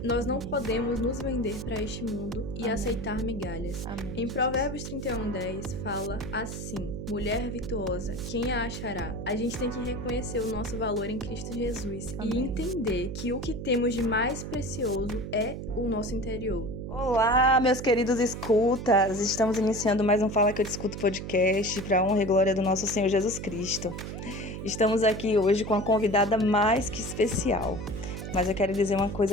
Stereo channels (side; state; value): right; noise; hum, 7 dB below the sound